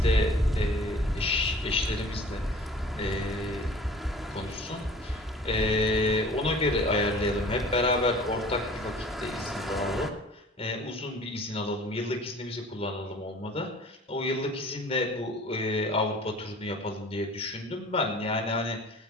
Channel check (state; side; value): normal; both; correlation 0.47